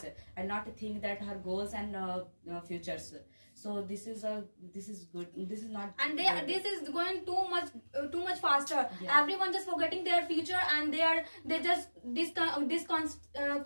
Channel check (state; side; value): inverted; both; correlation -1.00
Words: and not think that her goals and futures. So this is good. This is not. And good. this is going too much faster. Yeah. Everyone just forgetting their future, and they just